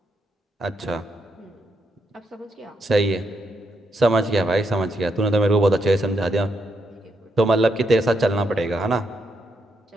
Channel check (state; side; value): normal; both; correlation 0.79